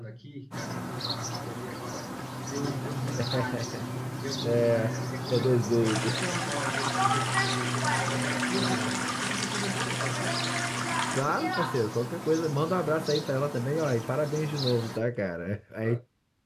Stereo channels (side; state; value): both; identical; correlation 1.00